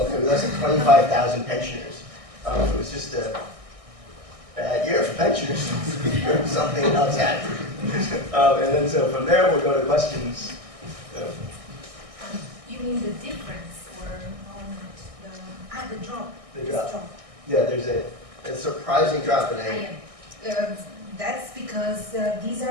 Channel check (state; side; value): late; left; 1.6 ms